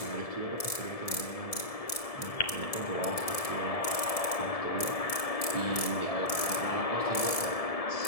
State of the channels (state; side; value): late; right; 1.7 ms